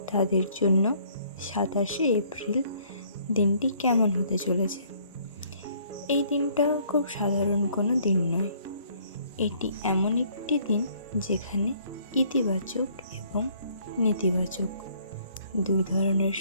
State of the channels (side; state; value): both; inverted; correlation -0.62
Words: তাদের জন্য 27শে এপ্রিল দিনটি কেমন হতে চলেছে। এই দিনটা খুব সাধারণ কোনো দিন নয়। এটি এমন একটি দিন যেখানে ইতিবাচক এবং নেতিবাচক দুই ধরনের